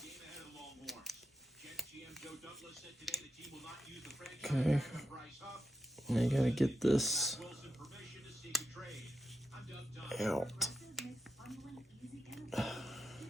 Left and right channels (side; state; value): both; normal; correlation 0.86